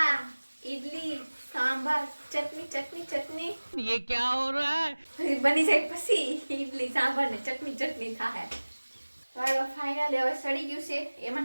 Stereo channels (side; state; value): both; inverted; correlation -1.00